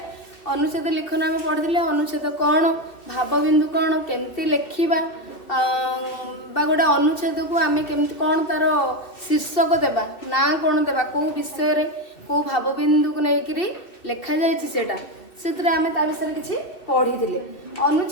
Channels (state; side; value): late; right; 2.7 ms